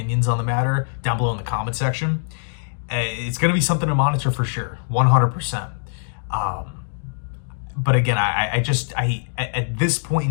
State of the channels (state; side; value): silent; right; digital silence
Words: on the matter down below in the comment section. It's going to be something to monitor for sure, 100%. But again, I at this point